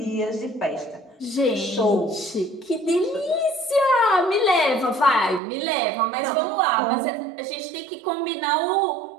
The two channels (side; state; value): left; drops out; at 5.4 s